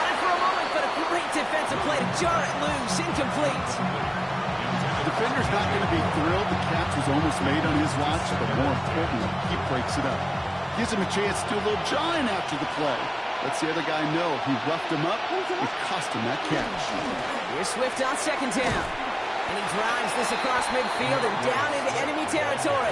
it for a moment, but a great defensive play to jar it loose. Incomplete. The defender's not going to be thrilled the catch was almost made on his watch, but more importantly, he breaks it up. Gives him a chance to do a little jawing after the play. Lets the other guy know he roughed him up. It cost him that catch. Here's Swift on 2nd down. And he drives this across midfield and down into enemy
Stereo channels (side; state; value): both; identical; correlation 1.00